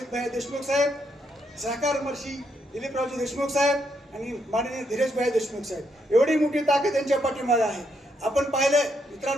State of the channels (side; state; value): both; normal; correlation 0.77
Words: भाई देशमुख साहेब, सहकार मंत्री दिलीपरावजी देशमुख साहेब आणि माननीय धीरजभाई देशमुख साहेब, एवढी मोठी ताकद यांच्या पाठीमागे आहे. आपण पाहिलं